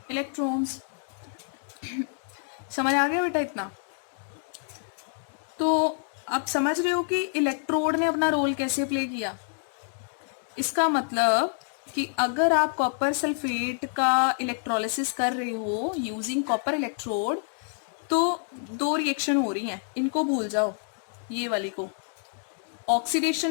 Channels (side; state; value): right; silent; 56 dB below the other